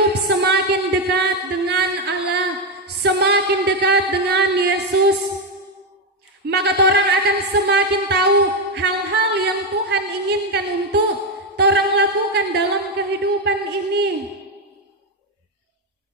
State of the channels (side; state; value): both; normal; correlation 0.07